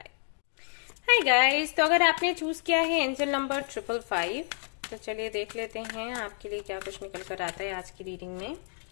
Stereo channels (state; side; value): silent; right; 58 dB below the other